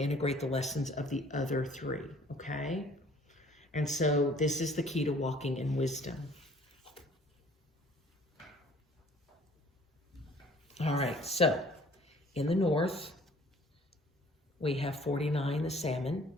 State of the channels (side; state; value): both; normal; correlation 0.55